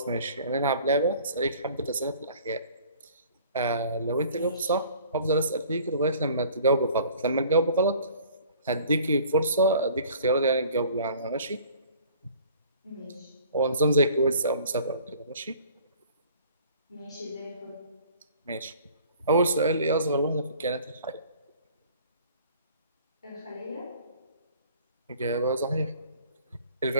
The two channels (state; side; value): inverted; both; correlation -0.51